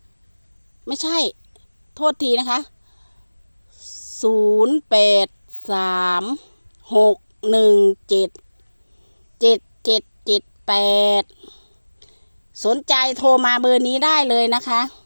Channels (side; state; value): both; inverted; correlation -1.00